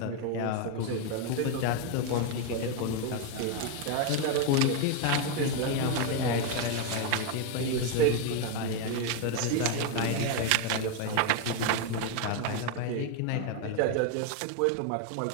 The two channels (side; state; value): both; different; correlation 0.01